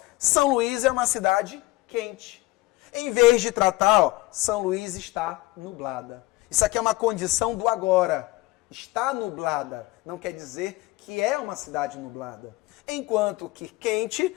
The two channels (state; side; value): quieter; right; 19.9 dB